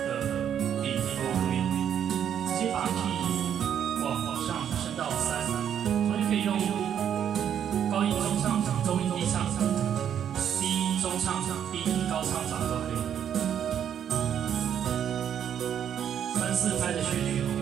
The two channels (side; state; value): left; quieter; 9.1 dB